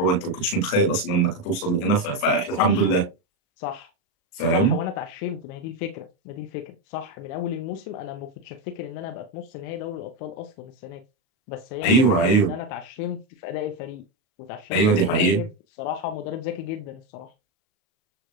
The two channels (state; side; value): late; right; 37 ms